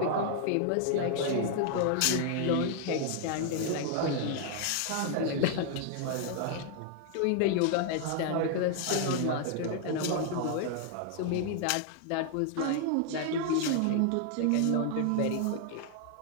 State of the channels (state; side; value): different; both; correlation 0.00